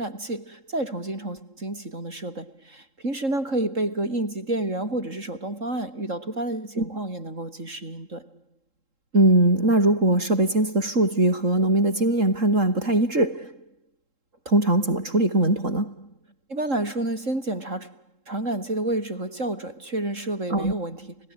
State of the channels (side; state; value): left; late; 3.7 ms